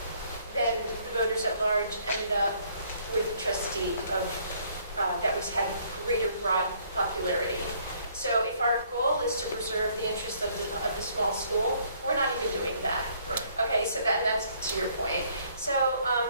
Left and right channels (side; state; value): both; inverted; correlation -0.64